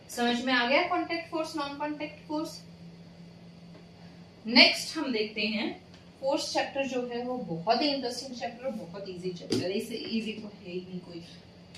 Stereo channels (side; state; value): both; identical; correlation 1.00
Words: समझ में आ गया contact force, non contact force. Next हम देखते हैं फोर्स चैप्टर जो है वो बहुत ही इंटरेस्टिंग चैप्टर, बहुत इजी चैप्टर है, इससे इजी तो है ही नहीं कोई।